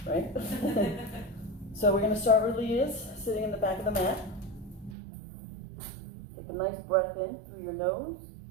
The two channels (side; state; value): left; drops out; at 5.0 s